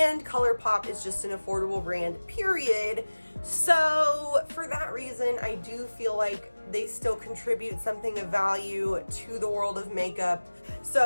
Colourpop is just an affordable brand, period. So for that reason, I do feel like they still contribute something of value to the world of makeup.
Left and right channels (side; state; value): both; inverted; correlation -1.00